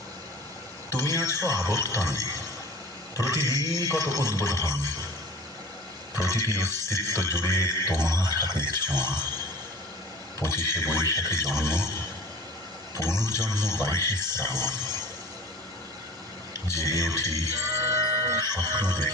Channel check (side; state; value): both; normal; correlation 0.41